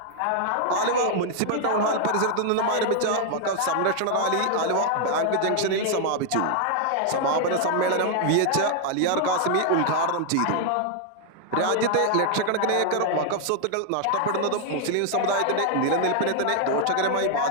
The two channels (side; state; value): both; different; correlation 0.00